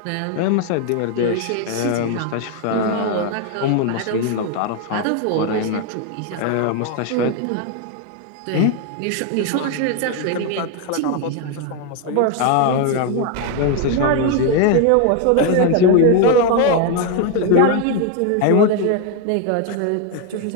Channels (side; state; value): both; different; correlation 0.01